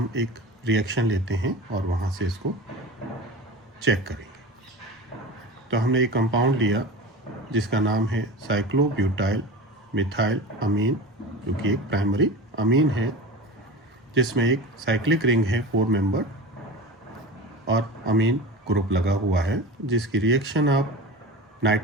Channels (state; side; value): normal; both; correlation 0.31